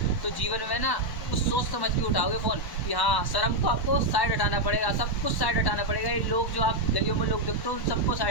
तो जीवन में ना कुछ सोच समझ के उठाओगे फ़ोन कि हाँ शर्म को आपको साइड हटाना पड़ेगा, सब कुछ साइड हटाना पड़ेगा। ये लोग जो आप गलियों में लोग देखते हो उन सबको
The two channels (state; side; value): late; right; 1.1 ms